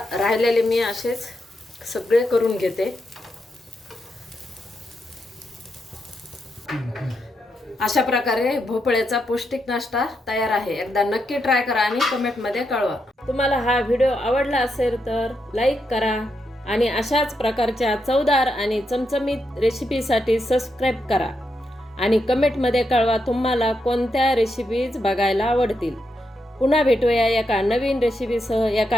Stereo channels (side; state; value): both; normal; correlation 0.83